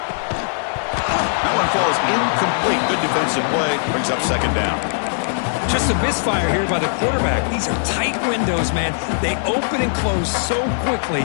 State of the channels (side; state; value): right; silent; digital silence